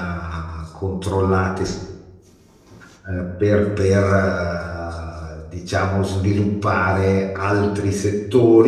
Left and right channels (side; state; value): both; identical; correlation 1.00